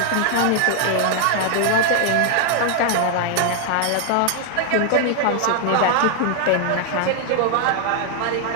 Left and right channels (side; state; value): both; different; correlation 0.00